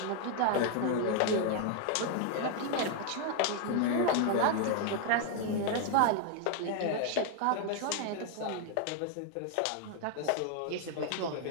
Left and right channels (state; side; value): different; both; correlation 0.00